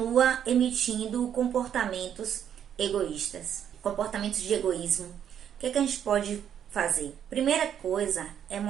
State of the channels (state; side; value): quieter; left; 9.2 dB